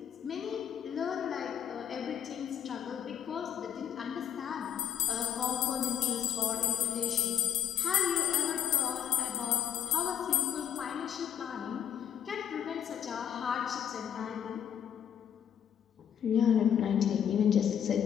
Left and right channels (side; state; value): right; quieter; 9.1 dB